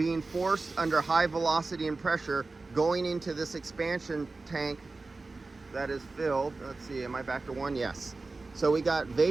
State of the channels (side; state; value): left; quieter; 3.6 dB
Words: forced under high velocity and pressure, going into this expansion tank that is filled. Let's see, am I back to one? Yes. So we got